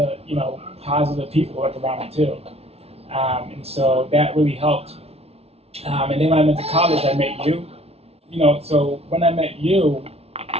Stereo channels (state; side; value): late; left; 0.30 ms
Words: positive people like around me too, and so that really helped. And then when I went to college, I met you. So when I met you,